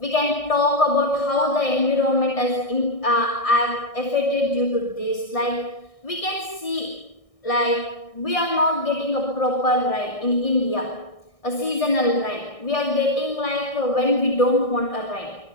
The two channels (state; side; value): late; right; 1.6 ms